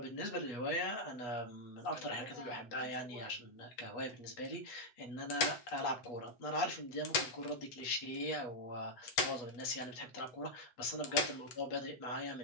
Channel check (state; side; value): late; right; 7.9 ms